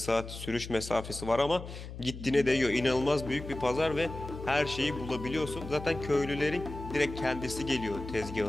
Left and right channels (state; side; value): noise; left; hum, 11 dB below the sound